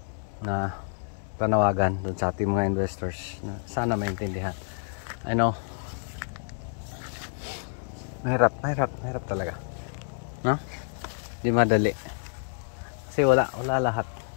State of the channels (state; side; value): silent; right; digital silence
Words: na panawagan doon sa ating mga investors na sana maintindihan. I know Mahirap talaga. No? Di madali. Kasi wala lahat.